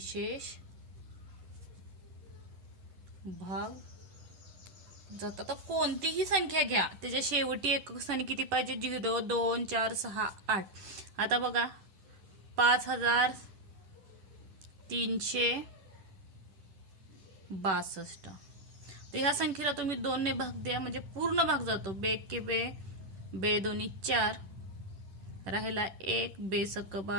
भाग जातात. तर कोणतीही संख्या घ्या, त्याच्या शेवटी एकक स्थानी किती पाहिजे, 0 2 4 6 8. आता बघा 5362. तर ह्या संख्येला तुम्ही 2 ने भाग द्या, म्हणजे पूर्ण भाग जातो. बे के बे, बे दोन्ही 4 राहिला 1, बे सक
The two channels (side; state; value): left; late; 10 ms